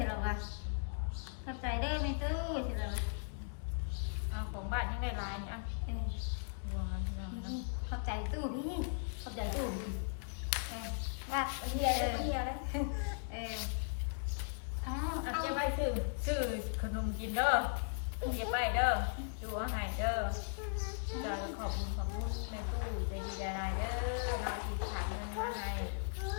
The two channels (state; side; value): silent; right; digital silence